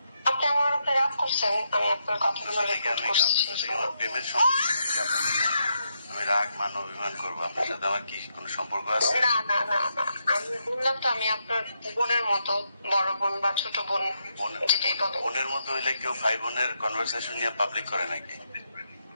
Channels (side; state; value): both; inverted; correlation -0.81